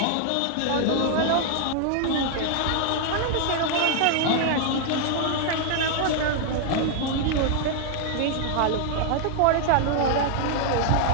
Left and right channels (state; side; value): different; both; correlation 0.00